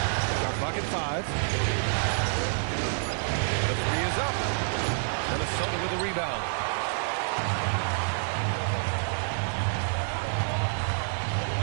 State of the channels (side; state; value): left; silent; digital silence